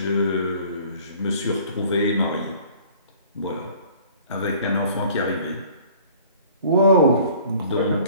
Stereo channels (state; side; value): inverted; both; correlation -0.51